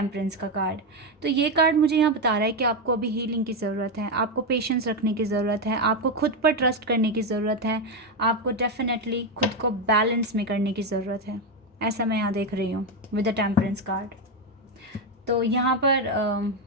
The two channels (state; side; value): normal; both; correlation 0.08